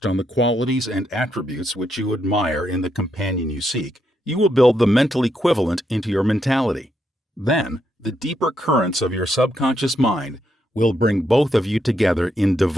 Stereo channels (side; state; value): both; normal; correlation 0.79